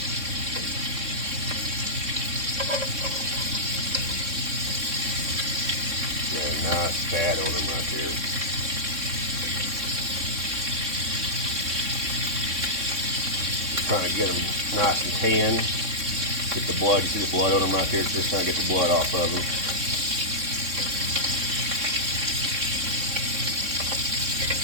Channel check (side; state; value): left; late; 3.6 ms